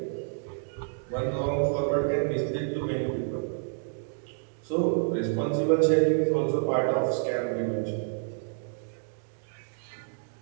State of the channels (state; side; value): silent; left; digital silence